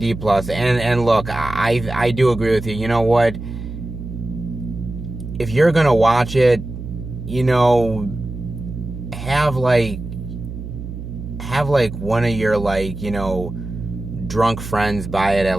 plus, and look, I do agree with you. You know what? If you're gonna watch it, have one of your drunk friends buy it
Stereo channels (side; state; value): right; noise; hum, 9 dB below the sound